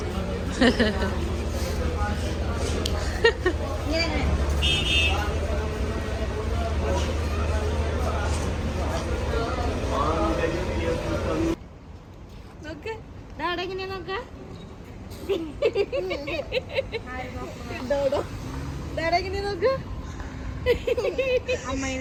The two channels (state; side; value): identical; both; correlation 1.00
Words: നോക്ക് ഡാഡ എങ്ങനെയാ നോക്ക? ഡാഡ എങ്ങനെയാ നോക്ക? അമ്മ